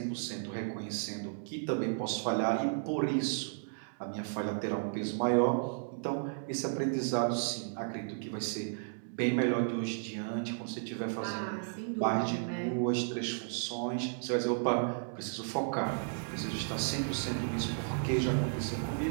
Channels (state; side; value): silent; left; digital silence